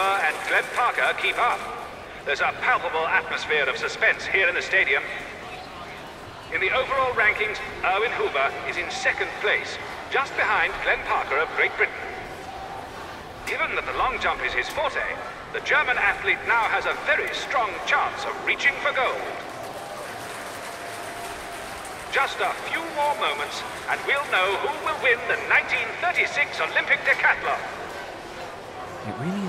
and Glenn Parker keep up? There's a palpable atmosphere of suspense here in the stadium. In the overall rankings, Erwin Huber is in 2nd place, just behind Glenn Parker of Great Britain. Given that the long jump is his forte, the German athlete now has a very strong chance of reaching for gold. Just a few more moments, and we'll know who will win the 1936 Olympic decathlon. It really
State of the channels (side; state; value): both; identical; correlation 1.00